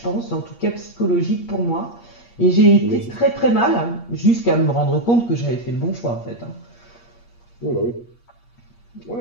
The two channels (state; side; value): late; right; 8.5 ms